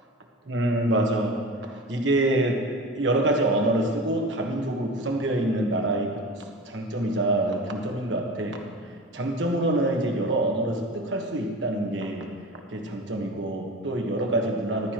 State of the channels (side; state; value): both; normal; correlation 0.33